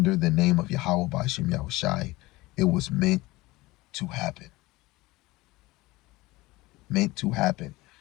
the name of Yahweh Ba'ashem Yahushai, it was meant to happen. Meant to happen.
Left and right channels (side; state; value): right; quieter; 20.4 dB